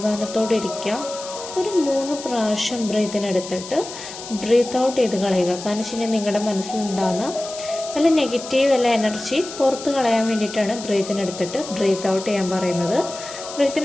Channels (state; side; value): noise; left; hiss, 12 dB below the sound